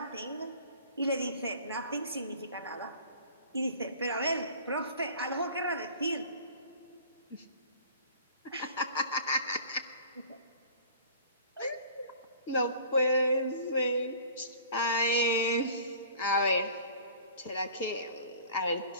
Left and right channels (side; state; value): both; inverted; correlation -0.47